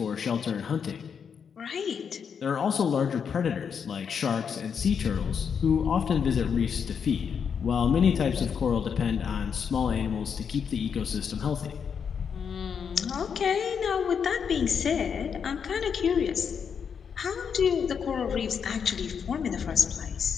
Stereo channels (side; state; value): right; quieter; 6.9 dB